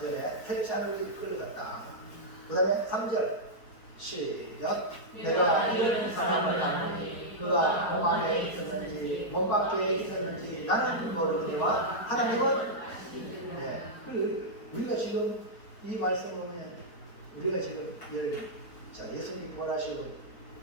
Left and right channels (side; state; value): right; late; 4.5 ms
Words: 전에 셋째 하늘에 이끌려갔다. 그 다음에 3절 시작. 내가 이런 사람을 아느니 그가 몸 안에 있었는지 몸 밖에 있었는지 나는 모르거니와 하나님은 네. 우리가 지금 이 말씀을 보면 우리가 지금 예수님 부활하시고